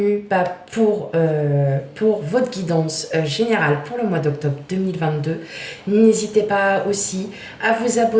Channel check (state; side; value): identical; both; correlation 1.00